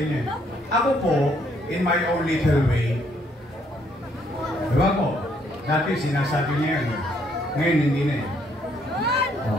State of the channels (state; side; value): normal; both; correlation 0.69